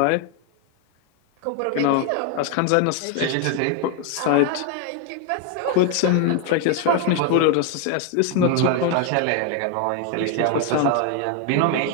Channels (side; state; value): both; different; correlation 0.01